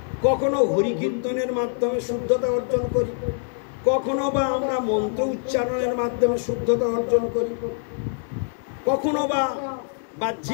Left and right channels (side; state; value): right; silent; digital silence